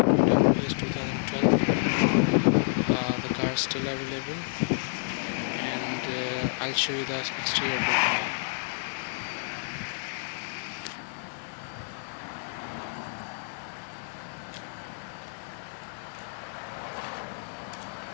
Toyota Prius 2012. The car is still available, and I'll show you the exterior bit now.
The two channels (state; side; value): silent; right; digital silence